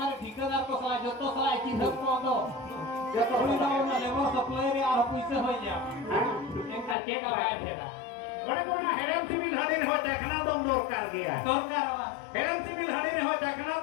ঠিকাদার কো সালা যত সালা চিন্তা কো তো Joto উনি তো dakai. না লেবার সাপ্লাই রে আর পয়সা হয়ে যাবে এনকা চেক আবাই ভেড়া Bade kona heran civil harin ho dekhna dom dorkar gaya. দরকার Heran civil harin ho dekhna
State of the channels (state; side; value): drops out; right; at 7.0 s